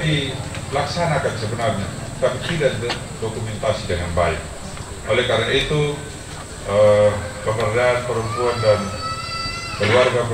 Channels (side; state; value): both; identical; correlation 1.00